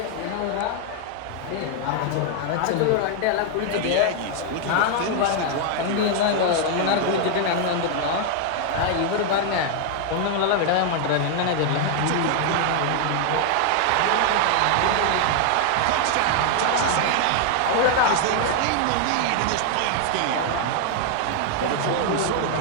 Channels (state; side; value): different; both; correlation 0.00